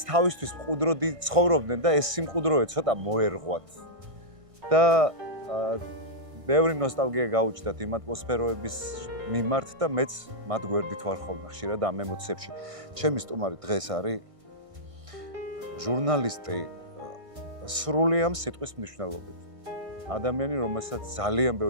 თავისთვის მყუდროდი ცხოვრობდნენ და ეს სიმყუდროე ცოტა მოერღვათ. და ბევრი ნოსტალგია გაუჩნდათ იმ ატმოსფეროების მიმართ და მეც მათ გვერდით ვარ ხოლმე ხშირად ამ ემოციებში. ჩემი სტუმარი დღეს არის ჟურნალისტი სრული ამ სიტყვის მნიშვნელობით. ადამიანი, რომელსაც ძალიან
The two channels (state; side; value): late; left; 1.6 ms